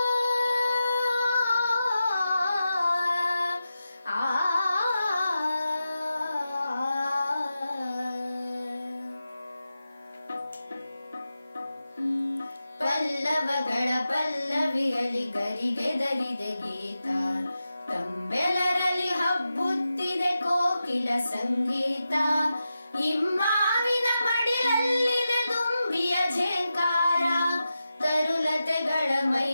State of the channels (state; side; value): inverted; both; correlation -0.91